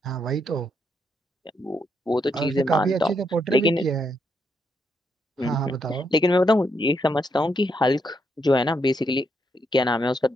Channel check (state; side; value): normal; both; correlation 0.78